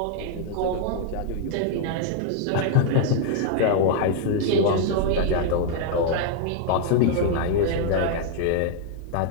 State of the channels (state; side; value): different; both; correlation 0.00